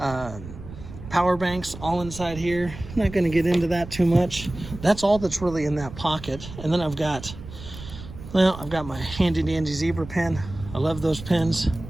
banks all inside here. I'm not gonna get into that too much. That's all that's really in that pocket. And then I've got my handy dandy zebra pen. I love those pens.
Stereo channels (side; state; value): right; noise; rumble, 13 dB below the sound